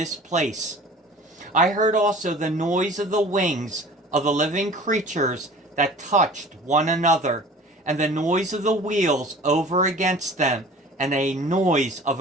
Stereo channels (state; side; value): normal; both; correlation 0.44